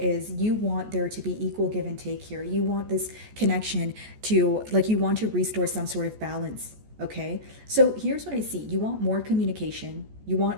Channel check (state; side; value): late; left; 14 ms